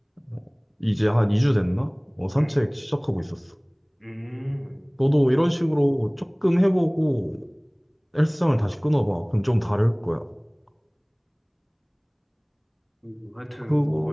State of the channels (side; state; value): both; identical; correlation 1.00